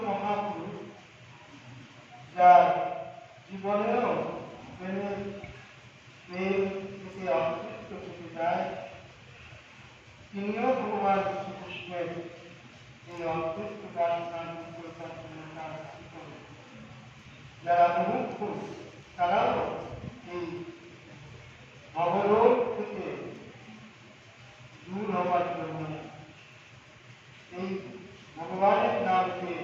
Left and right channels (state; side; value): identical; both; correlation 1.00